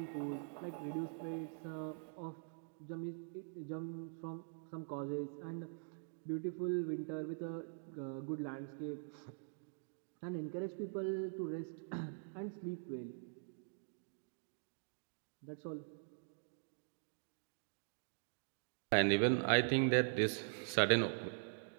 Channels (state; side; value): silent; left; digital silence